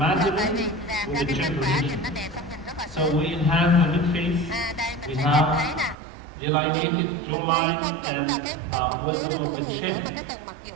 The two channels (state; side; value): drops out; left; at 6.0 s